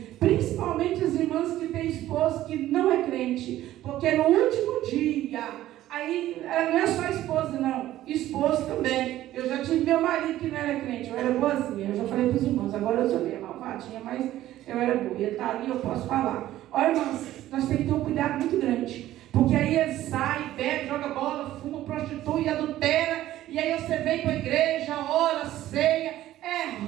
principalmente as irmãs que têm esposo que não é crente, porque no último dia, aí não é só esposa não, esposo também. Eu já tive meu marido que não era crente, eu era boazinha, eu já falei para os irmãos, agora eu sou meio malvadinha, mas eu era boa, ele está ali, eu posso falar. Olha, irmãos, nós temos que ter um cuidado muito grande, porque aí ele sai, bebe, joga bola, fuma, prostitui, adultera, e aí você vem para a igreja, ora, ceia, é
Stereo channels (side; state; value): left; quieter; 14.1 dB